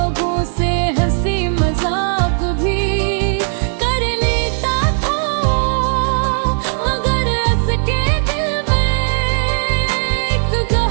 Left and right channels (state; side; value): silent; left; 68 dB below the other